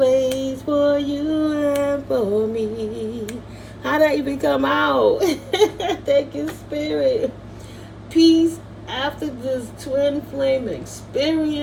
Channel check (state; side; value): identical; both; correlation 1.00